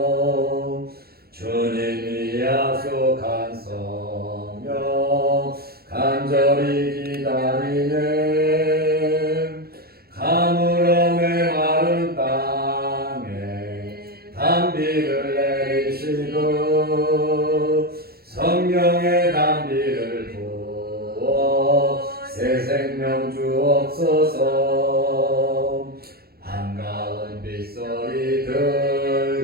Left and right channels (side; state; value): left; late; 0.45 ms